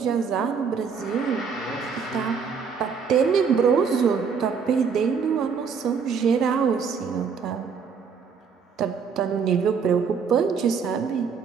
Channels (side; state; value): left; quieter; 6.0 dB